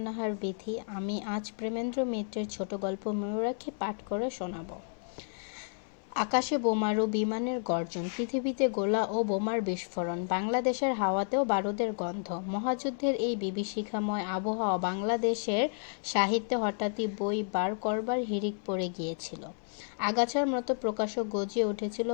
নাহার বিথি। আমি আজ প্রেমেন্দ্র মিত্রের ছোট গল্প ময়ূরাক্ষী পাঠ করে শোনাব। আকাশে বোমারু বিমানের গর্জন, পৃথিবীতে গোলা ও বোমার বিস্ফোরণ, বাংলাদেশের হাওয়াতেও বারুদের গন্ধ। মহাযুদ্ধের এই বিভীষিকাময় আবহাওয়া বাংলাদেশের সাহিত্যে হঠাৎই বই বার করবার হিড়িক পড়ে গিয়েছিল। আগাছার মতো প্রকাশক গজিয়ে উঠেছিল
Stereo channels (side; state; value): right; silent; 57 dB below the other